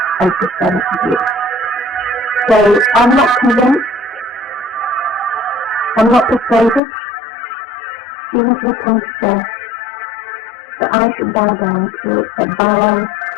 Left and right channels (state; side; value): drops out; right; at 6.8 s